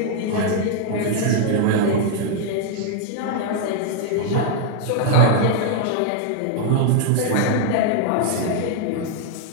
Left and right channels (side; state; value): both; different; correlation 0.00